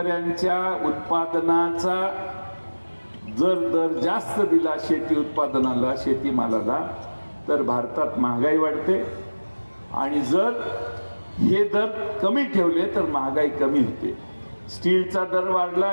उत्पादनाचा जर दर जास्त दिला शेती उत्पादनाला, शेतीमालाला, तर भारतात महागाई वाढते. आणि जर हे दर कमी ठेवले तर महागाई कमी होते. स्टीलचा दर वाढला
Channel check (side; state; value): both; inverted; correlation -1.00